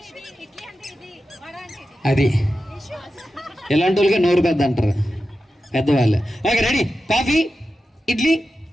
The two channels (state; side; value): normal; both; correlation 0.91